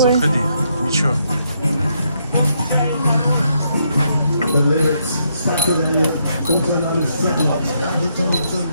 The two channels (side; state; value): both; inverted; correlation -0.76